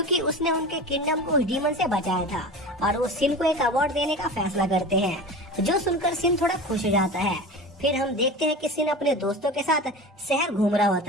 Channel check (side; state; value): both; normal; correlation 0.32